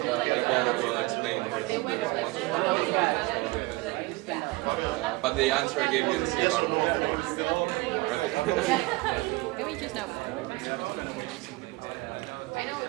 like Jana will explain the response part, but the answer I gave you in CLR Can we choose now? I know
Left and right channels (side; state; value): left; quieter; 23.2 dB